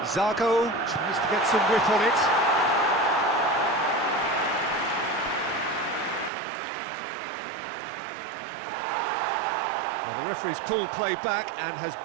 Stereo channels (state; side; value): drops out; left; at 6.3 s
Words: Zago tries to get some whip on it. Well, the referee's pulled play back and has